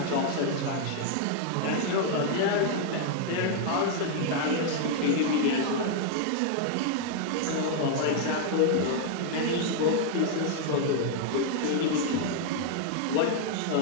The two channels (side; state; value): both; different; correlation 0.00